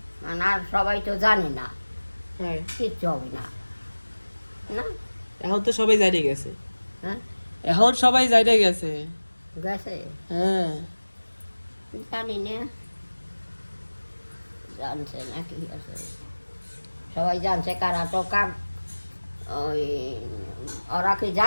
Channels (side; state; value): both; inverted; correlation -1.00